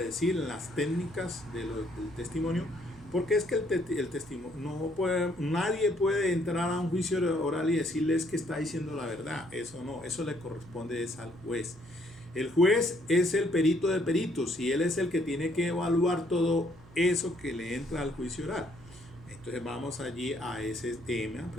decir, en las técnicas del testimonio. Porque es que el testimonio nadie puede entrar a un juicio oral y decirles que está diciendo la verdad. Eso no, eso le corresponde es al juez. El juez es el perito de peritos y él es el que tiene que evaluar todo eso que le entra al juicio oral. Entonces vamos allí a ese tema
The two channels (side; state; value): right; noise; hum, 23 dB below the sound